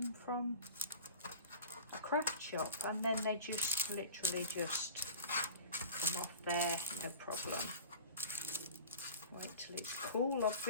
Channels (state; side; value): inverted; both; correlation -0.37